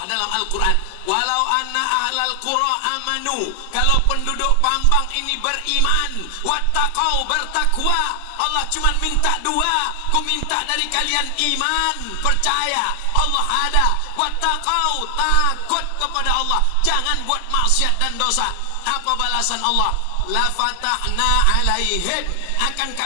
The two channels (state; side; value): different; both; correlation 0.00